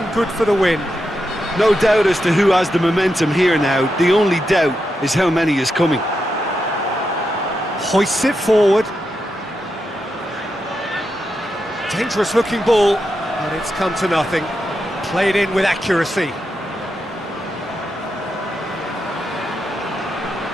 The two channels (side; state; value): both; normal; correlation 0.86